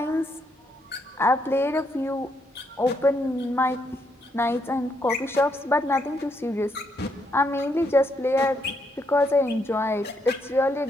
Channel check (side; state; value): both; normal; correlation 0.76